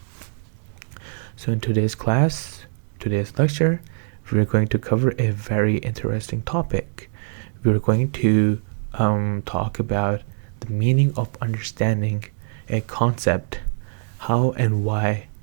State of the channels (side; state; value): left; silent; 63 dB below the other